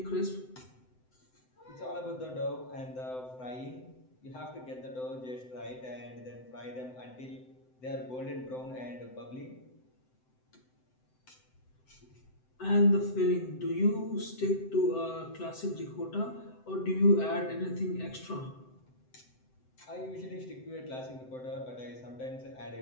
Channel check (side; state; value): right; late; 7.8 ms